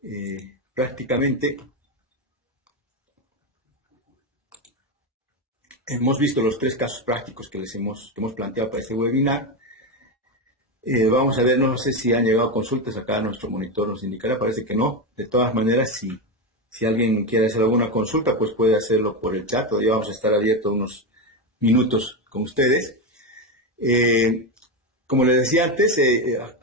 Prácticamente hemos visto los 3 casos prácticos que hemos planteado para este webinar. Vamos a ver, no sé si han llegado consultas, acá nuestro monitor nos indicará, parece que no. De todas maneras, si alguien quiere hacer alguna consulta, pues puede hacerlo por el chat, todavía vamos a estar abiertos unos minutos con ustedes. Como les decía antes,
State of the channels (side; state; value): both; normal; correlation 0.13